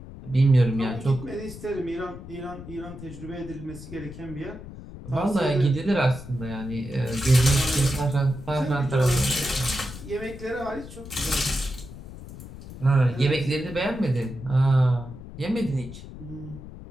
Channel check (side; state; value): left; noise; rumble, 14 dB below the sound